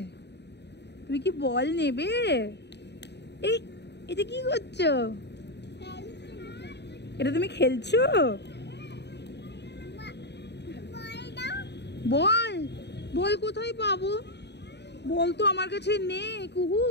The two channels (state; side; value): late; right; 0.50 ms